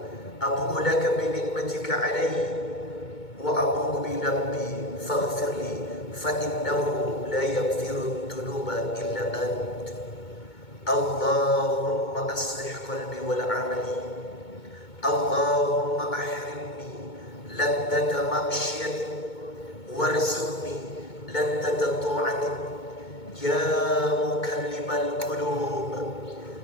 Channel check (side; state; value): right; late; 2.2 ms